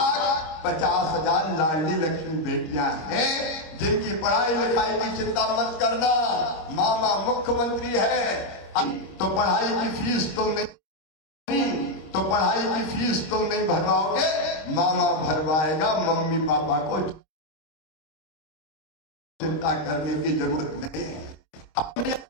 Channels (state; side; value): late; right; 25 ms